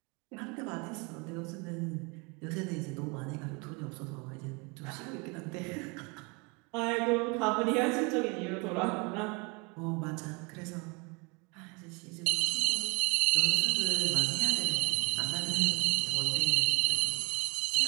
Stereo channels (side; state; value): left; quieter; 30.6 dB